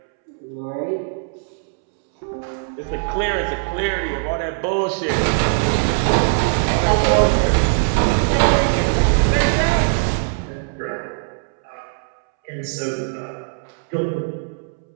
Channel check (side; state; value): left; silent; 65 dB below the other